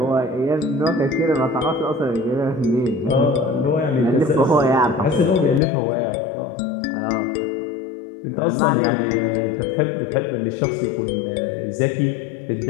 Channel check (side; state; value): right; drops out; at 5.6 s